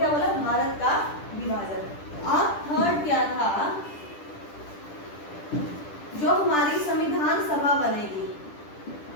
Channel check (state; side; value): late; right; 10 ms